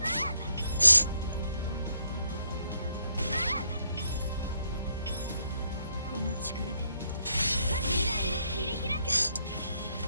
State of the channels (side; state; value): both; inverted; correlation -0.73